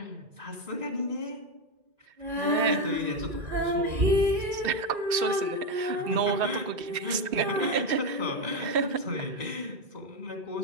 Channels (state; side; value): late; left; 2.7 ms